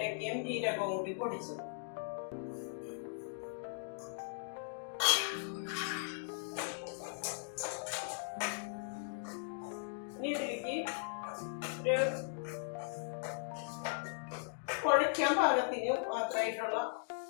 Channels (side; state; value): right; silent; digital silence